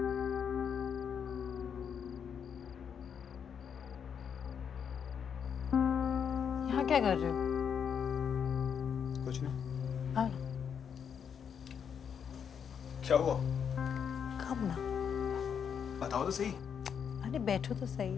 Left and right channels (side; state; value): right; quieter; 7.5 dB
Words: यहाँ क्या कर रहे हो? कुछ नहीं। हाँ, क्या हुआ? कब ना। बताओ तो सही। अरे बैठो तो सही,